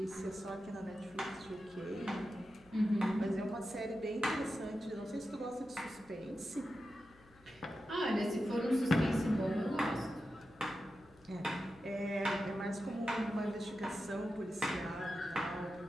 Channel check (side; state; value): left; noise; hum, 27 dB below the sound